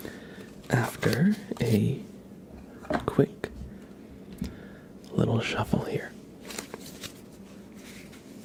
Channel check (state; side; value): identical; both; correlation 1.00